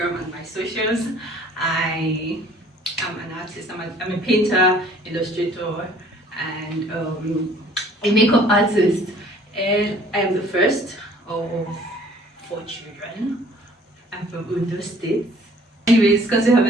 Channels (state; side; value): normal; both; correlation 0.54